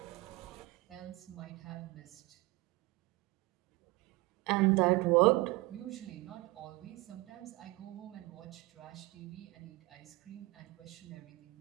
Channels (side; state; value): left; quieter; 21.9 dB